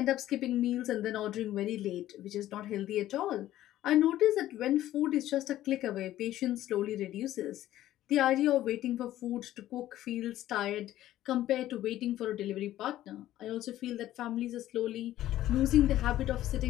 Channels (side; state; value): right; quieter; 13.8 dB